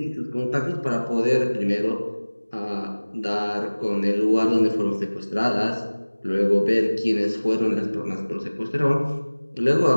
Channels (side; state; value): both; inverted; correlation -1.00